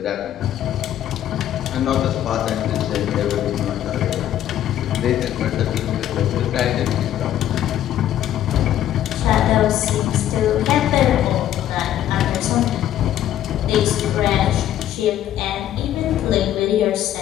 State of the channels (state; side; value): quieter; right; 11.8 dB